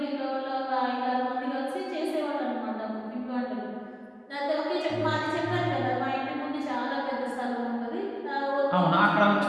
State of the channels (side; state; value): both; identical; correlation 1.00